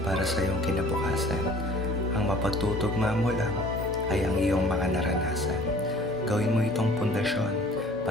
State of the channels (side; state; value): both; normal; correlation 0.50